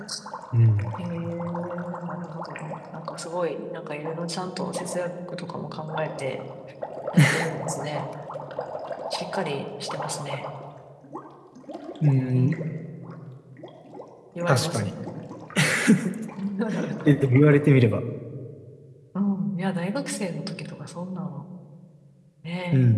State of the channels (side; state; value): both; identical; correlation 1.00